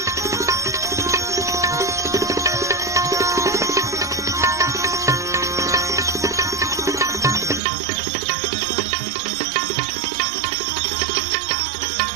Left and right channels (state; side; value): drops out; left; at 7.6 s